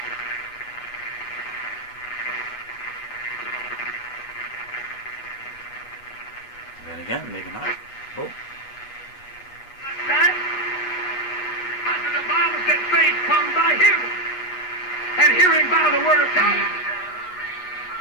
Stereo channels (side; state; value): right; late; 8.2 ms